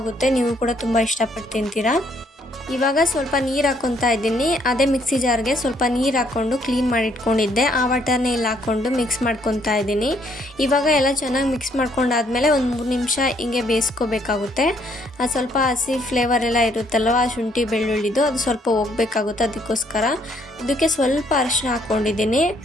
ನೀವು ಕೂಡ ತುಂಬ ಇಷ್ಟಪಟ್ಟು ತಿಂತೀರಾ. ಇವಾಗ ಸ್ವಲ್ಪ ನೀರು ಹಾಕ್ಕೊತಾ ಇದ್ದೀನಿ. ಅದೇ ಮಿಕ್ಸಿ ಜಾರ್ಗೆ ಸ್ವಲ್ಪ ನೀರು ಹಾಕ್ಕೊಂಡು ಕ್ಲೀನ್ ಮಾಡಿ ಇಟ್ಕೊಂಡಿದ್ದೆ. ಆ ವಾಟರ್ನ ಇಲ್ಲಿ ಹಾಕ್ಕೊಂಡು ಮಿಕ್ಸ್ ಮಾಡ್ಕೊತಾ ಇದ್ದೀನಿ. ಇವಾಗ ಎಲ್ಲ ಚೆನ್ನಾಗಿ ಮಿಕ್ಸ್ ಮಾಡ್ಕೊಂಡಾದ್ಮೇಲೆ ಒಂದು 3 ನಿಮಿಷ ಹಿಂಗೆ ಬೇಯಿಸ್ಕೋಬೇಕಾಗುತ್ತೆ. ಸ್ವಲ್ಪ ಹಸಿ ಫ್ಲೇವರ್ ಎಲ್ಲ ಇರುತ್ತಲ್ವ, ಶುಂಠಿ ಬೆಳ್ಳುಳ್ಳಿದು, ಅದು ಸ್ವಲ್ಪ ಹೋಗ್ಬೇಕಾಗುತ್ತೆ. ಅದಕ್ಕೋಸ್ಕರ ಇದಕ್ಕೆ ಸ್ವಲ್ಪ ಅರಿಶಿನ ಹಾಕ್ಕೊಂಡಿದ್ದೀನಿ.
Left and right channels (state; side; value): normal; both; correlation 0.68